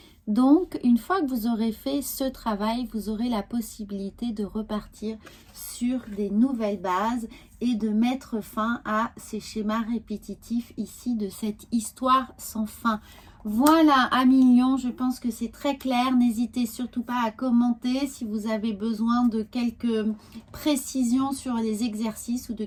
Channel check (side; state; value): both; identical; correlation 1.00